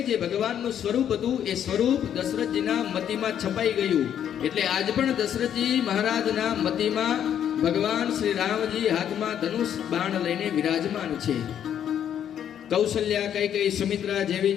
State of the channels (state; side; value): quieter; right; 9.6 dB